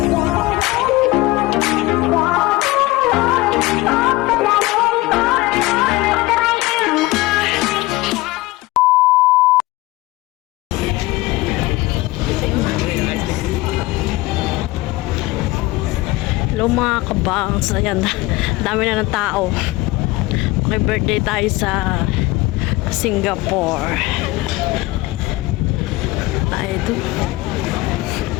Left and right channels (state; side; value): quieter; right; 20.0 dB